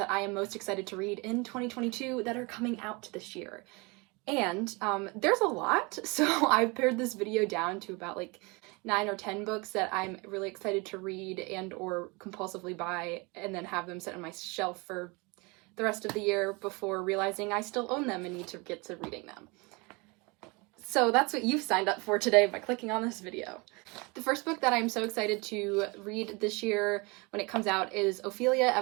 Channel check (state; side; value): quieter; left; 27.7 dB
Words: I am most excited to read in 2022 that are coming out this year. And there's a lot, so I've pared this video down to about like 9 or 10 books that I'm really excited to read and or compulsively buy and then have them sit on my shelf for the rest of the year before realizing I still own them and need to get to reading them. So that's what you've signed up for today by clicking on this video. The first book that I'm so excited to read this year when it comes out is Ophelia